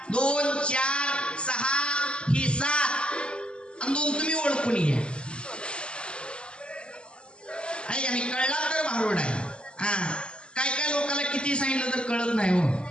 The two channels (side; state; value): right; late; 0.052 ms